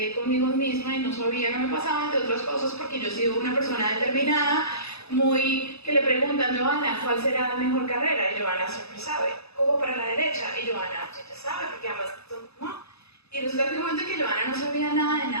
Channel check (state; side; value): late; right; 0.79 ms